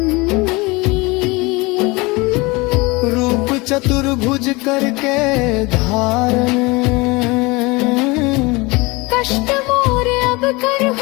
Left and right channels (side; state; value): right; quieter; 24.5 dB